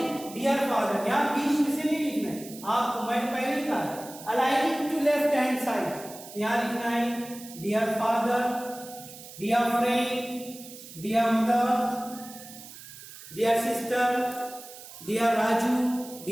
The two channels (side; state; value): right; noise; hiss, 16 dB below the sound